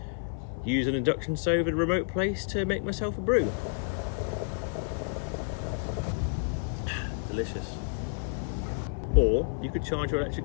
use an induction stove in a remote place to make myself a brew. Delicious. Or you could charge your electric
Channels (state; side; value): silent; right; digital silence